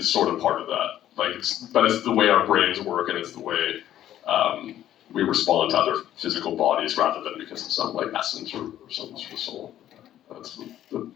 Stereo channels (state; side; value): quieter; right; 12.0 dB